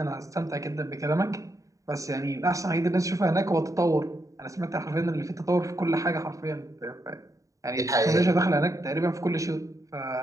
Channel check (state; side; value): late; left; 0.16 ms